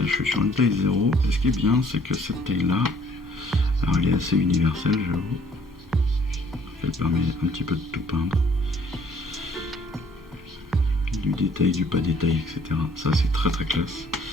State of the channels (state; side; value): normal; both; correlation 0.60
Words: je suis sur une taille 0, et ce qui est bien, c'est que cette taille-là, alors elle est assez universelle, j'avoue. Elle permet un petit peu de tout peindre. Du détail, du pas détail, etc. Ça, c'est très très classe.